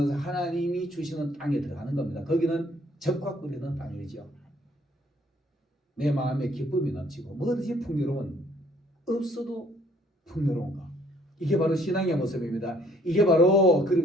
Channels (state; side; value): normal; both; correlation 0.62